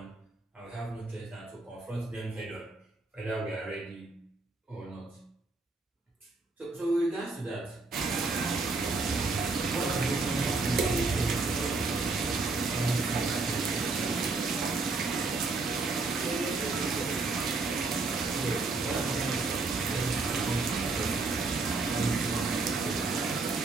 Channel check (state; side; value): quieter; left; 3.8 dB